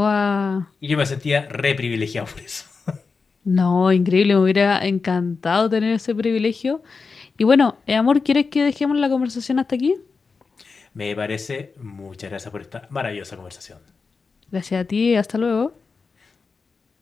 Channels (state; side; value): quieter; right; 4.7 dB